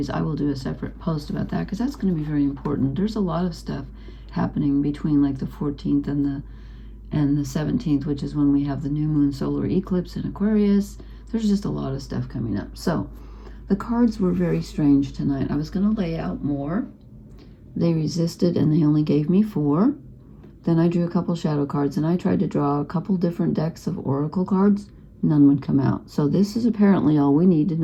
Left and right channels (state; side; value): identical; both; correlation 1.00